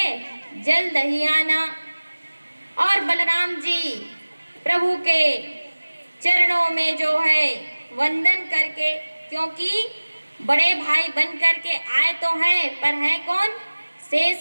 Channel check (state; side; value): inverted; both; correlation -1.00